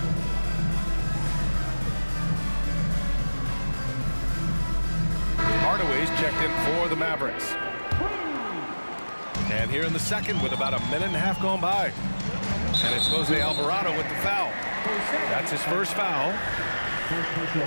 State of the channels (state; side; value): inverted; both; correlation -1.00